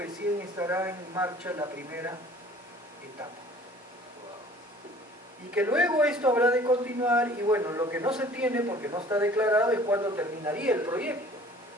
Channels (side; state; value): both; normal; correlation 0.50